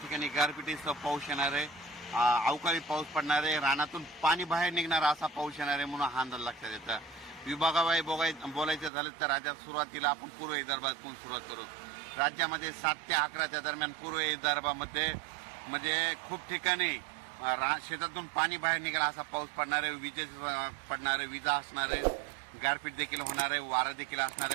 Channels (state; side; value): drops out; left; at 8.9 s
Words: गारपिटीसह पाऊस येणार आहे, अवकाळी पाऊस पडणार आहे, रानातून पाणी बाहेर निघणार असा पाऊस येणार आहे म्हणून हा अंदाज लक्षात येतो। विभागाबाई बोलायचं झालं तर राज्यात सुरुवातीला आपण पूर्व विदर्भातून सुरुवात करू। राज्यामध्ये 7 ते 11 दरम्यान पूर्व विदर्भामध्ये खूप ठिकाणी शेतातून पाणी बाहेर निघाला असा पाऊस पडणार आहे, पडणार आहे, विजा असणार आहे, गारपीट देखील होणार आहे, वारा देखील असणार